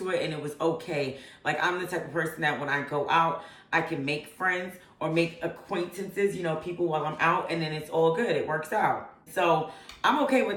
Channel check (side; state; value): both; identical; correlation 1.00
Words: it and it was okay. Like I'm the type of person that when I go out, I can make friends or make acquaintances, you know, people while I'm out, and then it's all good. It works out. So I'm okay